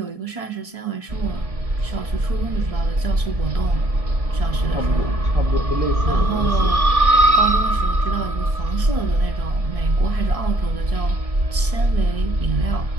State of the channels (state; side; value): late; left; 1.7 ms